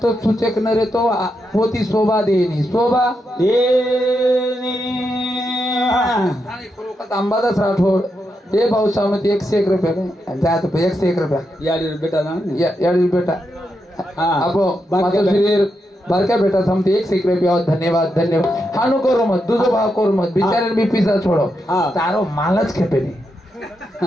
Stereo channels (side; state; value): both; normal; correlation 0.84